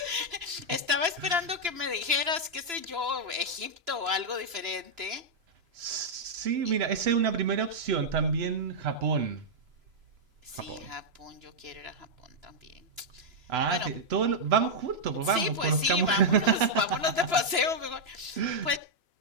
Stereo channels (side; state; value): left; late; 3.0 ms